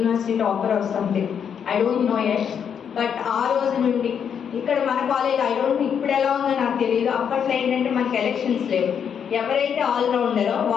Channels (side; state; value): right; quieter; 7.7 dB